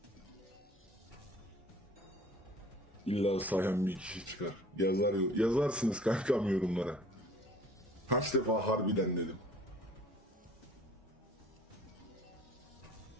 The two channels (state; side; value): normal; both; correlation 0.50